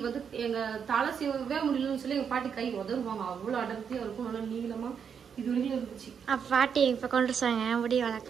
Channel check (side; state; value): left; quieter; 7.1 dB